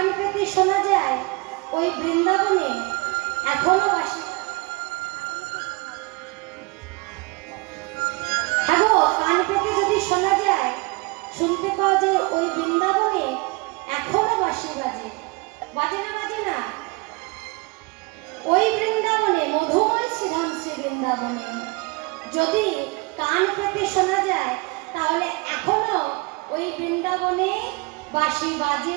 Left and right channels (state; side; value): quieter; left; 27.0 dB